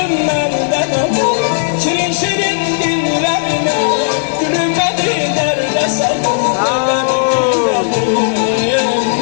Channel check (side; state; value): right; silent; digital silence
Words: alır, şirin şirin dillerine gülümedi nerede sandın?